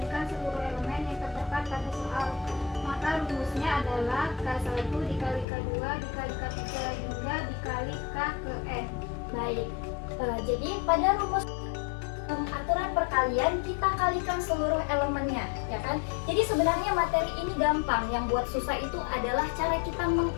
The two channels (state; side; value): drops out; right; at 5.5 s